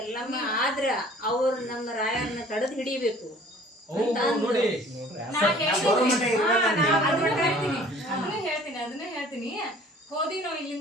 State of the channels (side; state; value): both; normal; correlation 0.51